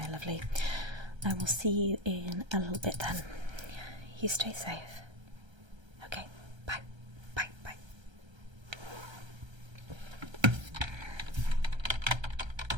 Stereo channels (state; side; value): late; left; 1.3 ms